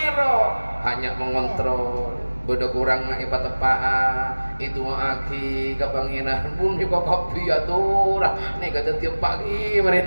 hanya mengontrol bodoh kurang nak ipat tepa itu aki kebanginan pun kok kopi ya tuh nih kata tiap pagi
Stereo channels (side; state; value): both; inverted; correlation -1.00